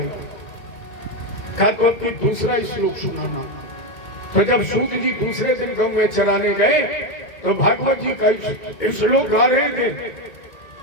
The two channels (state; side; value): late; right; 2.2 ms